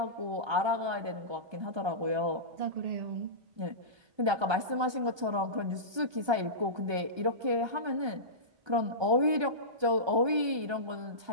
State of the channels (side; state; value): left; late; 1.3 ms